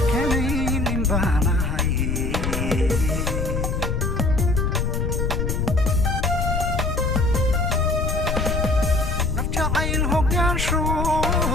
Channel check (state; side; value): noise; left; rumble, 1 dB below the sound